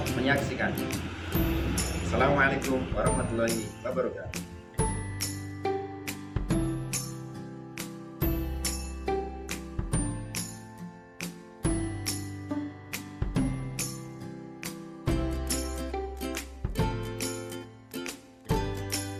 menyaksikan. Assalamualaikum warahmatullahi wabarakatuh.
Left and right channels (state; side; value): identical; both; correlation 1.00